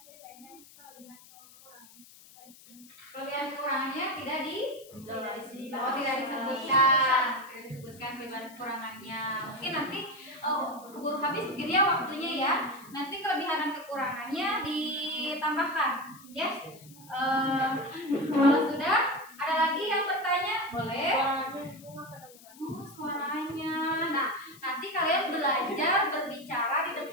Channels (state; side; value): noise; left; hiss, 22 dB below the sound